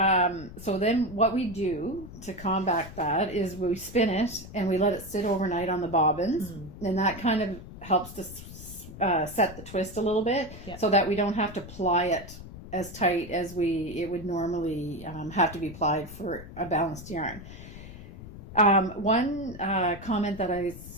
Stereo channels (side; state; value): left; noise; rumble, 14 dB below the sound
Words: so then what we do to combat that is we spin it and we let it sit overnight on the bobbins, and that kind of helps to set the twist a little bit, so that we don't have to ply it as tight as it would normally have to be plied for a balanced yarn. One comment that I